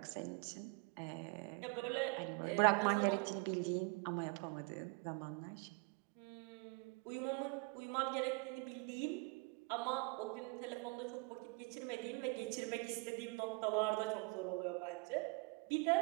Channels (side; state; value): left; quieter; 29.7 dB